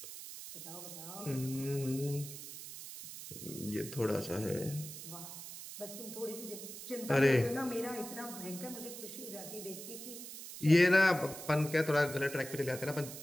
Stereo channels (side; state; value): right; noise; hiss, 11 dB below the sound